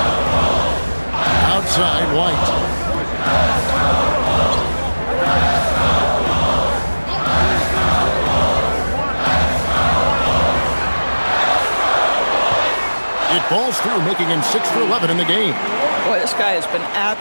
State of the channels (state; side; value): inverted; both; correlation -1.00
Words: Outside, White. It falls through, making him 6 for 11 in the game. Boy, this guy has been